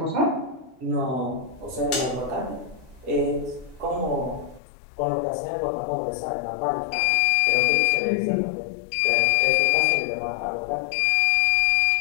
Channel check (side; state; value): right; drops out; at 4.6 s